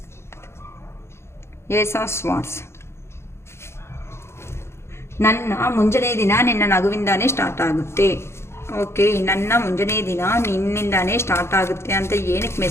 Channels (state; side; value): late; right; 0.13 ms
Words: Ace of Swords. ನನ್ನ ಮುಂಜಾನೆ ದಿನ ನಿನ್ನ ನಗುವಿಂದಾನೇ ಸ್ಟಾರ್ಟ್ ಆಗುತ್ತೆ. ಓಕೆ, ನನ್ನ ಮುಂಜಾನೆ ದಿನ ನಿನ್ನಿಂದಾನೇ ಸ್ಟಾರ್ಟ್ ಆಗುತ್ತೆ ಅಂತ ಏನಕ್ಕೆ